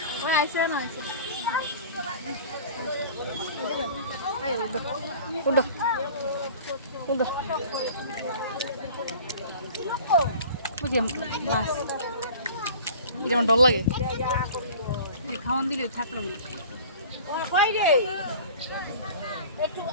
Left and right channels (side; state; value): both; inverted; correlation -0.43